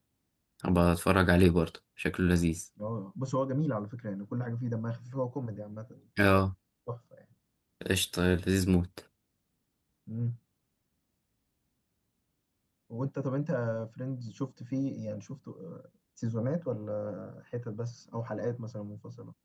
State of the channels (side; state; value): both; identical; correlation 1.00